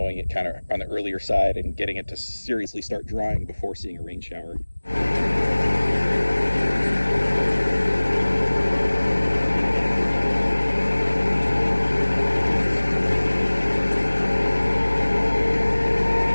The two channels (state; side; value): inverted; both; correlation -1.00